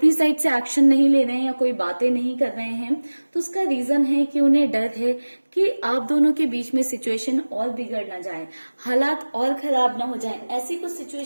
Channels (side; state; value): both; inverted; correlation -1.00